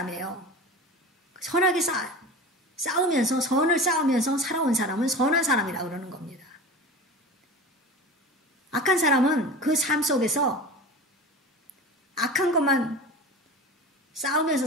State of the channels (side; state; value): both; normal; correlation 0.32